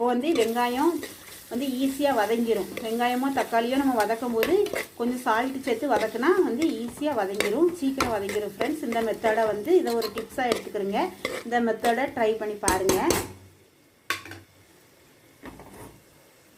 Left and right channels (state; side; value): identical; both; correlation 1.00